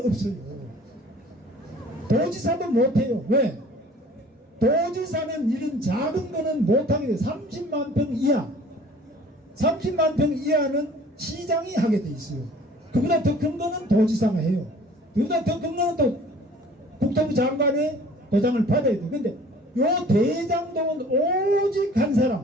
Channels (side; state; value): both; normal; correlation 0.50